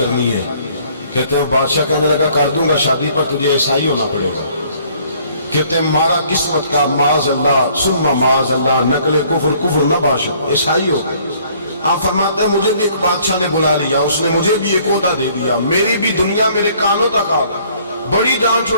ہے۔ کہتے ہیں بادشاہ کہنے لگا کر دوں گا شادی، پر تجھے عیسائی ہونا پڑے گا۔ کہتے ہیں مارا قسمت کا معاذ اللہ ثم معاذ اللہ، نقل کفر کفر نہ باشد، عیسائی ہو گئے۔ آپ فرماتے ہیں مجھے بھی ایک بادشاہ نے بلا لیا، اس نے مجھے بھی ایک عہدہ دے دیا، میری بھی دنیا میرے کانوں تک آ گئی، بڑی جان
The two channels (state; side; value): inverted; both; correlation -0.60